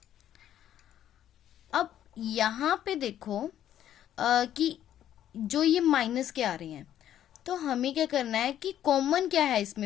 अब यहां पे देखो कि जो ये माइनस के आ रहे हैं, तो हमें क्या करना है कि कॉमन क्या है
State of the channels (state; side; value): quieter; right; 11.1 dB